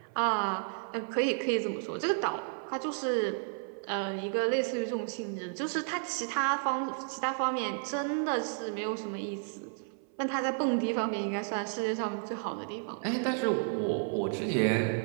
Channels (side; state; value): left; silent; 56 dB below the other